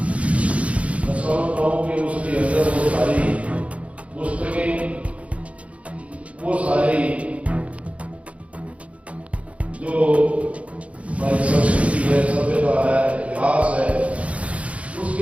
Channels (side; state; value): left; late; 0.064 ms